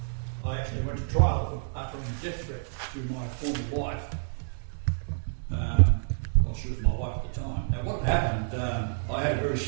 I actually went to trial for uttering a death threat to my former wife. Well, she was my wife at the time. Now, what happened, I had a very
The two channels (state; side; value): silent; left; digital silence